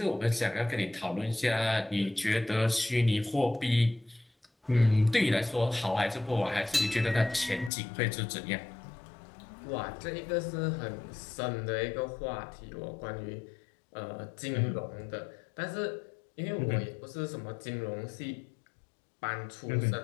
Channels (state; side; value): drops out; right; at 7.7 s